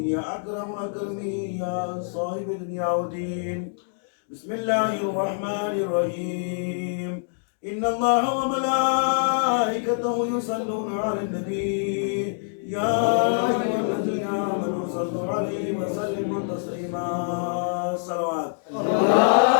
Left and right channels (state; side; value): silent; right; digital silence